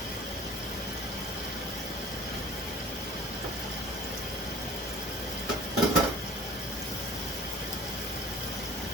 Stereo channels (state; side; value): normal; both; correlation 0.45